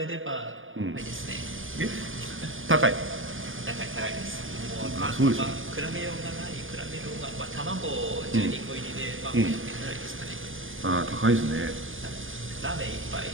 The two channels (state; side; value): late; left; 0.58 ms